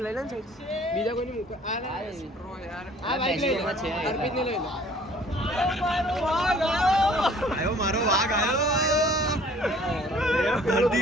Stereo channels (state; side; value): normal; both; correlation 0.54